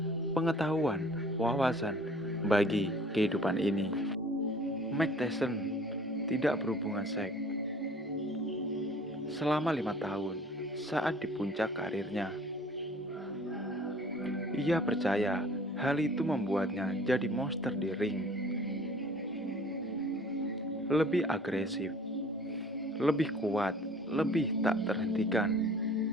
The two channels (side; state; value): both; normal; correlation 0.50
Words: pengetahuan, wawasan bagi kehidupan ini. Mike Tyson tidak berhubungan seks selama 5 tahun saat di puncak karirnya. Ia percaya hal itu membuatnya jadi monster di ring, lebih agresif, lebih kuat, lebih tak terhentikan.